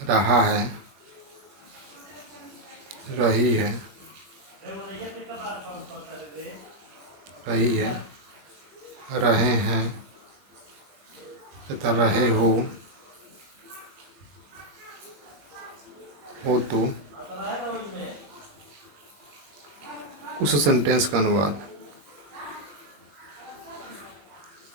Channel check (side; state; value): left; late; 21 ms